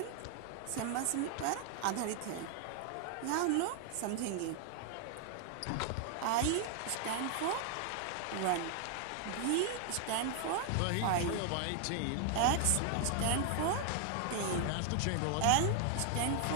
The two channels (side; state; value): both; different; correlation 0.00